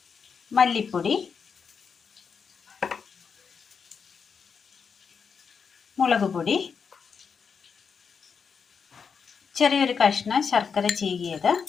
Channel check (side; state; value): right; quieter; 6.1 dB